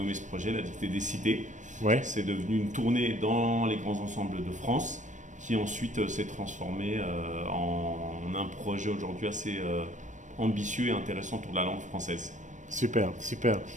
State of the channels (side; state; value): left; late; 0.36 ms